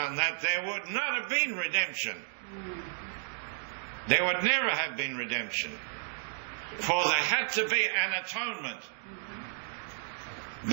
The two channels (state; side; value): silent; left; 56 dB below the other